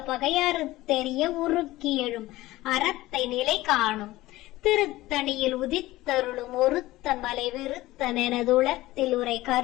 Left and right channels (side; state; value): right; quieter; 17.6 dB